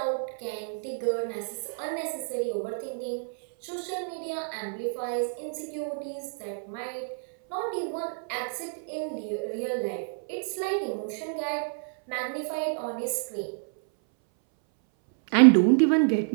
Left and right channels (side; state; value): left; silent; 59 dB below the other